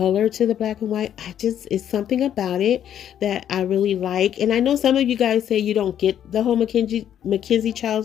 to the black and white, it's something about it that I really like. And I know some of you guys say you don't get the whole Mackenzie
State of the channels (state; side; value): quieter; right; 10.0 dB